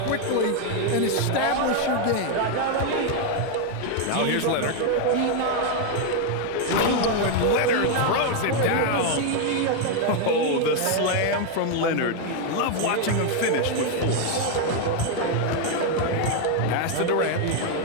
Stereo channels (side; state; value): both; different; correlation 0.01